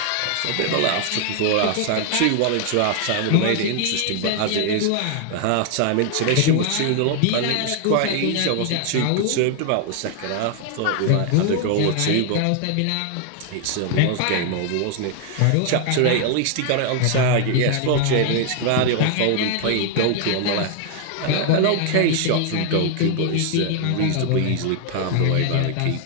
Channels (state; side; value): different; both; correlation 0.00